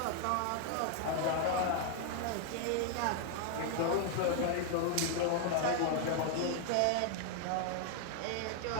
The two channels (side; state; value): both; different; correlation 0.00